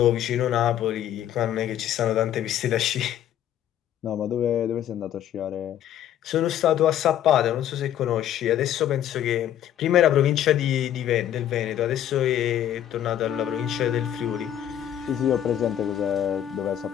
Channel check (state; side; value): quieter; right; 11.0 dB